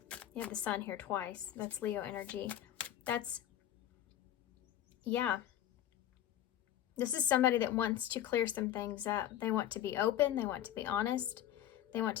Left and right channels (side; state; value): right; quieter; 11.8 dB